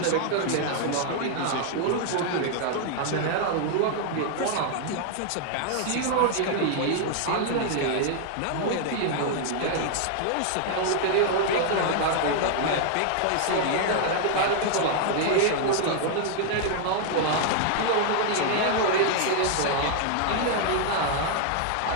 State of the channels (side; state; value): both; different; correlation 0.00